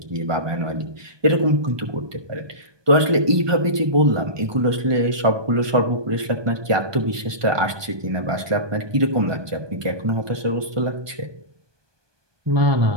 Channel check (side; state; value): left; late; 1.2 ms